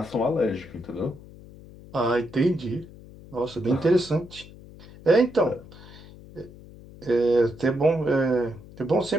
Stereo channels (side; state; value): left; noise; hum, 19 dB below the sound